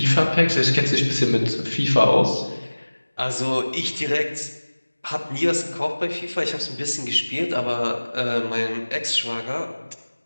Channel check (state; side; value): inverted; both; correlation -1.00